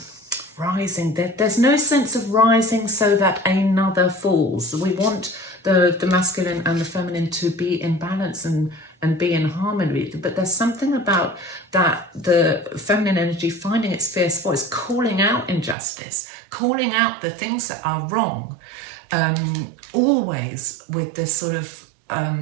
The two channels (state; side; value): drops out; left; at 15.8 s